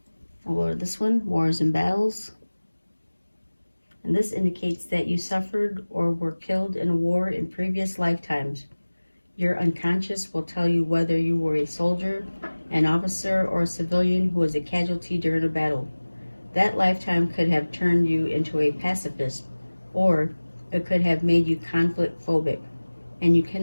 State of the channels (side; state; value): both; inverted; correlation -1.00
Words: I'll go to this one, Wars and Battles. and this indicates that you suffered or were killed in a war in previous lifetimes. Your unconscious will tell you whether you were a soldier, an officer, or a civilian who was a casualty during a battle. That lifetime could have turned you into a pacifist, or it could have made you conflict phobic, and you